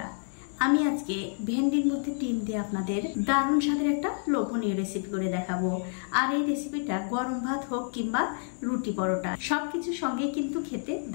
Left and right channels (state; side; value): silent; right; 59 dB below the other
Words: আমি আজকে ভেন্ডির মধ্যে ডিম দিয়ে আপনাদের দারুণ স্বাদের একটা লোভনীয় রেসিপি করে দেখাবো। আর এই রেসিপিটা গরম ভাত হোক কিংবা রুটি পরোটা সবকিছুর সঙ্গে কিন্তু খেতে